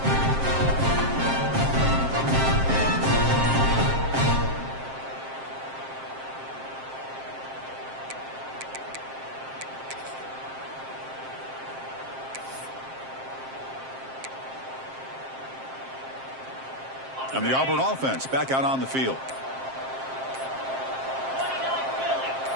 And the Auburn offense back out on the field.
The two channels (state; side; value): late; left; 7.6 ms